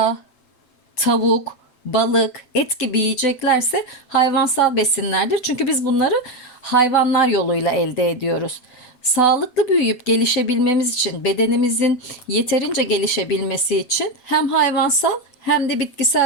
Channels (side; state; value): right; late; 7.9 ms